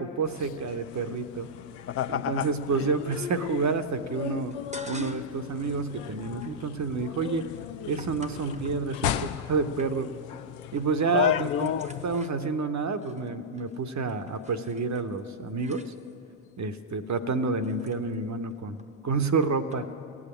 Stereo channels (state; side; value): normal; both; correlation -0.08